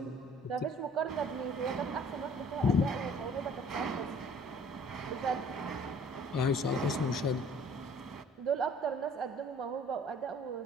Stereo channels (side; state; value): both; normal; correlation 0.53